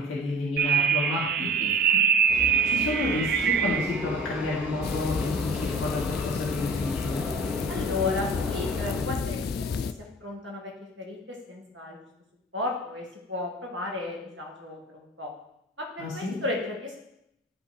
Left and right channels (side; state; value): both; normal; correlation 0.41